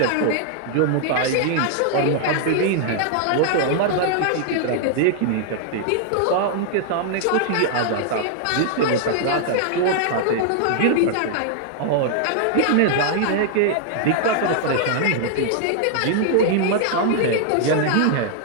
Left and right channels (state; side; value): different; both; correlation 0.00